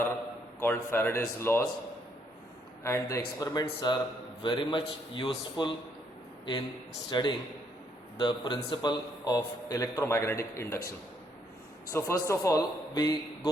called Faraday's laws, and the experiments are very much useful in studying the principle of electromagnetic induction. So first of all, we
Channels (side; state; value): both; normal; correlation 0.72